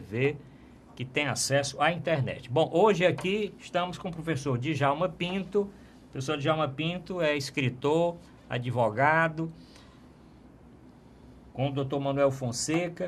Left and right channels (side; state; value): both; identical; correlation 1.00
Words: que tem acesso à internet. Bom, hoje aqui estamos com o professor Djalma Pinto. O professor Djalma Pinto é escritor, advogado, com o Dr. Manuel